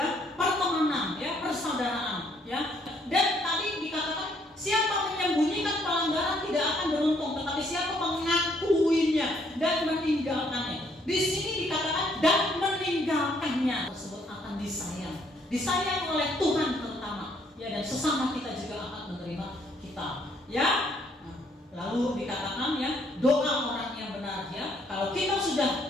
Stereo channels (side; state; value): both; normal; correlation 0.68